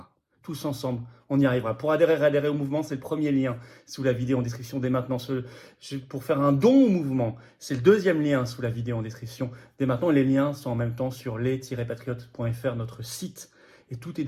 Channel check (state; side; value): identical; both; correlation 1.00